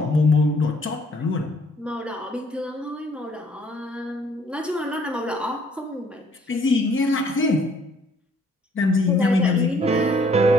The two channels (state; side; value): normal; both; correlation 0.62